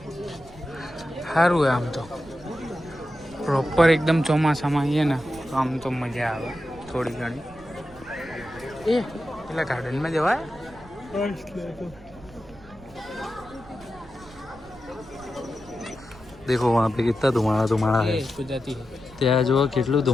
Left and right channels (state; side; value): noise; right; rumble, 22 dB below the sound